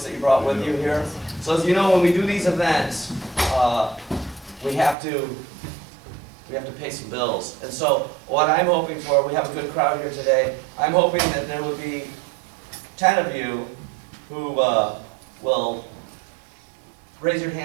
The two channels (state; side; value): drops out; left; at 5.0 s